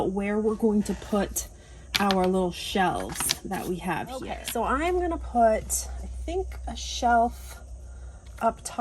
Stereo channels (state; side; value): identical; both; correlation 1.00